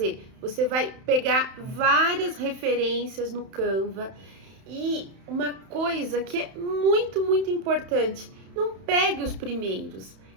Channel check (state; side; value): late; left; 31 ms